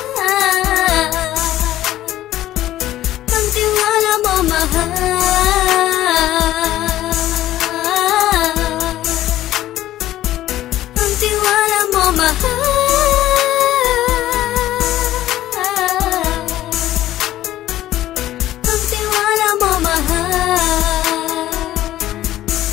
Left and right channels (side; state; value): right; quieter; 14.1 dB